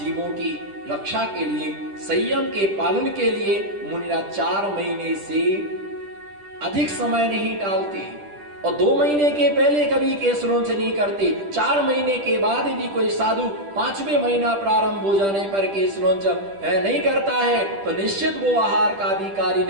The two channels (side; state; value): left; late; 10 ms